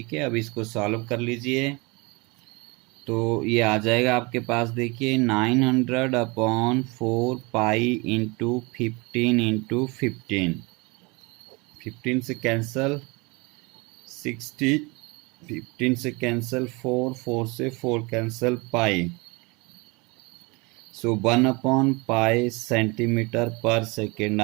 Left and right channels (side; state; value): left; quieter; 27.0 dB